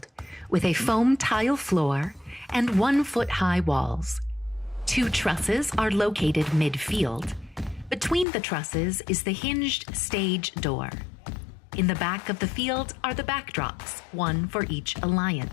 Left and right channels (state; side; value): drops out; right; at 8.2 s